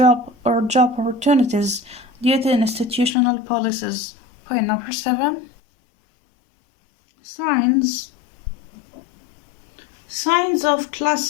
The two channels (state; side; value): drops out; right; at 3.2 s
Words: opportunities due to institutional policies. Point number 7. Signs of